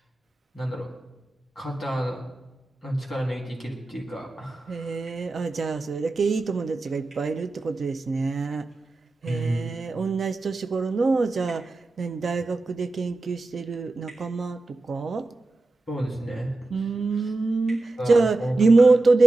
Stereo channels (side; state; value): left; quieter; 3.1 dB